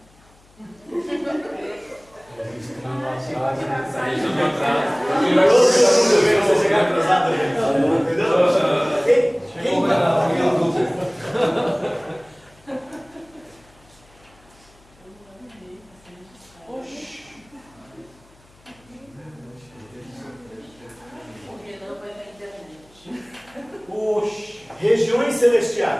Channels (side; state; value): left; noise; hum, 29 dB below the sound